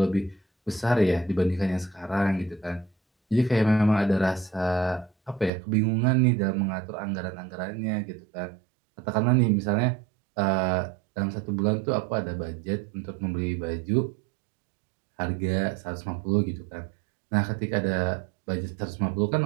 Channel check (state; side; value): drops out; left; at 5.5 s